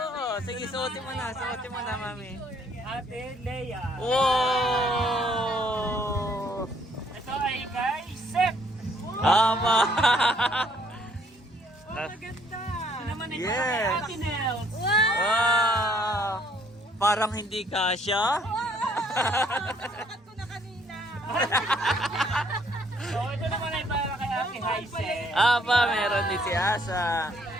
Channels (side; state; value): both; normal; correlation 0.65